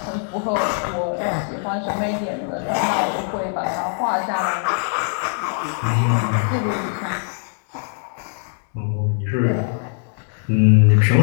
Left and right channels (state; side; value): silent; right; 65 dB below the other